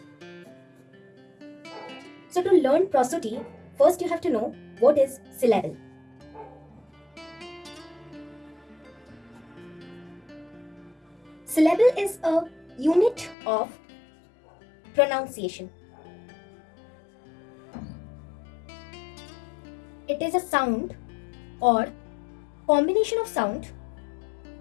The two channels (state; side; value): drops out; right; at 13.4 s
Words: So to learn prosody, first you have to know what is syllable. Syllable is a unit of pronunciation. It is a sound or combination of sound